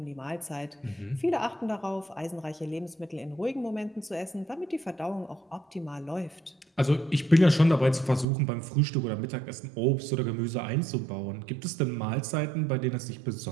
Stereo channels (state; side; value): drops out; left; at 8.2 s